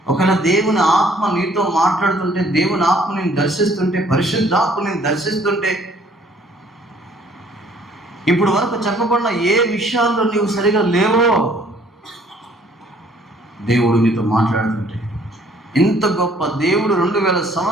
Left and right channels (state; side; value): normal; both; correlation 0.60